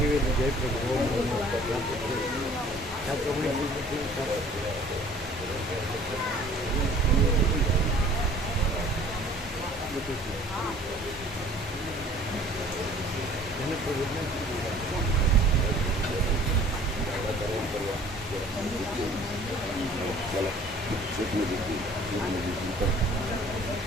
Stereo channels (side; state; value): both; normal; correlation 0.51